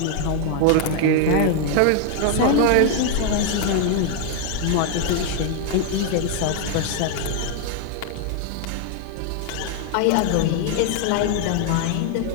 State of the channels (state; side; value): different; both; correlation 0.00